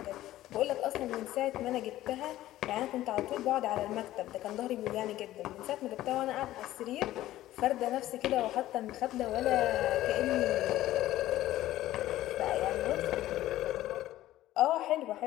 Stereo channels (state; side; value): quieter; right; 14.8 dB